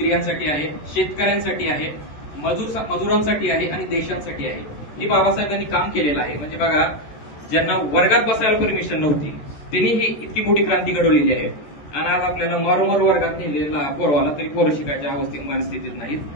आहे, शेतकऱ्यांसाठी आहे, मजुरांसाठी आहे आणि देशांसाठी आहे. हे बाबासाहेबांनी काम केलेलं आहे. म्हणजे बघा, ज्यांना वर्गात बसायला परमिशन नव्हती त्यांनी ही इतकी मोठी क्रांती घडवलेली आहे. आणि आज आपल्याला मारोमार वर्गात नेलेला पोरवाला तरी पोरं शिकायच्या मानस्थितीत नाहीत.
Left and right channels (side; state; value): right; late; 13 ms